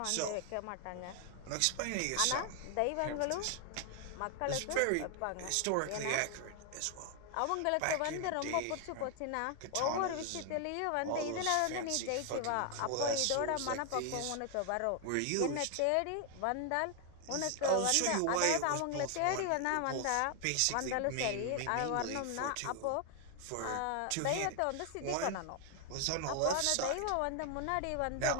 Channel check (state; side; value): different; both; correlation 0.00